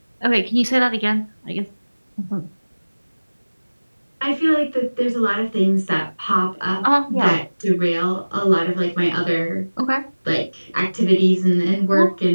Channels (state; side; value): inverted; both; correlation -1.00